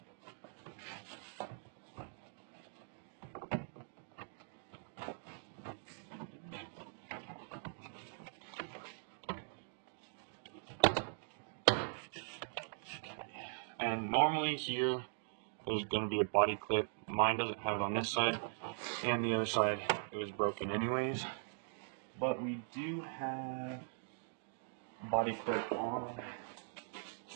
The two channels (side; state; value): left; silent; digital silence